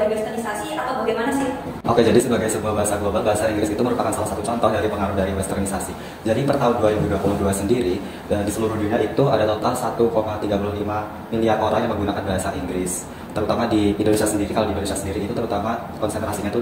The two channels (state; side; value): identical; both; correlation 1.00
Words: westernisasi atau bagaimana sih? Oke, jadi sebagai sebuah bahasa global, bahasa Inggris itu merupakan salah satu contoh dari pengaruh dari westernisasi. Jadi per tahun 2022 sendiri, dan di seluruh dunia itu ada total 1,35 miliar orang yang menggunakan bahasa Inggris. Terutama di Indonesia sendiri, kalau di Indonesia sendiri itu terutama konsentrasinya itu